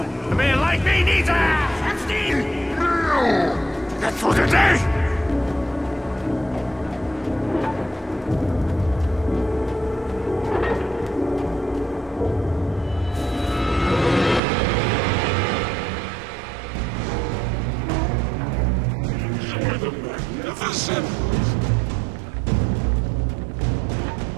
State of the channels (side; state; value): left; drops out; at 14.4 s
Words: A man like me needs a 16 meal. That's for the day. Magnificent.